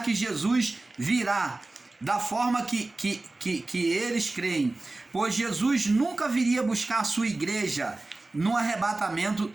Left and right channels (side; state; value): left; quieter; 3.1 dB